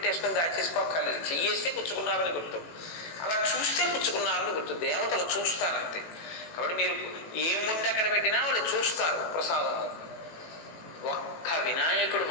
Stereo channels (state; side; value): late; right; 18 ms